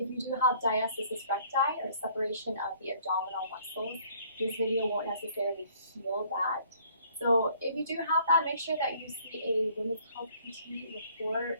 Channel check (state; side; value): inverted; both; correlation -0.59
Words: you do have diastasis recti or separation of the abdominal muscles, this video won't necessarily heal that. So if you do have that, make sure that you see a women's health PT before